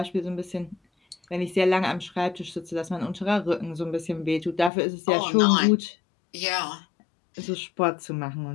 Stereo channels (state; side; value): drops out; right; at 4.7 s